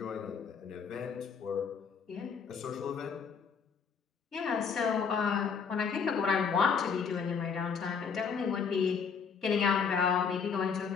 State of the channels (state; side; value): quieter; right; 6.1 dB